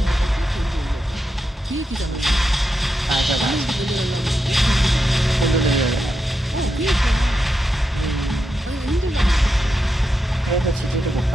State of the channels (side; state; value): both; normal; correlation 0.86